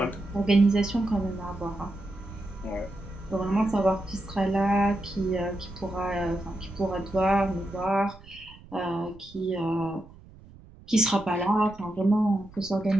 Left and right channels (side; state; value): right; noise; rumble, 21 dB below the sound